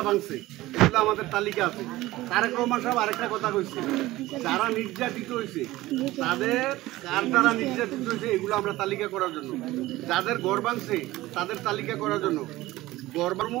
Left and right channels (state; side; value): quieter; left; 17.6 dB